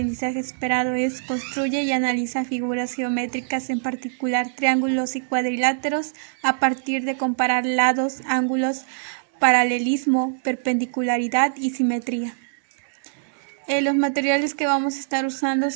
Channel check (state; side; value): silent; left; digital silence